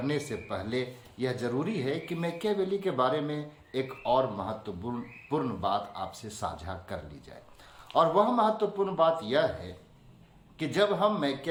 से पहले यह जरूरी है कि मैकियावेली के बारे में एक और महत्वपूर्ण बात आपसे साझा कर ली जाए, और वह महत्वपूर्ण बात यह है कि जब हम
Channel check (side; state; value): both; identical; correlation 1.00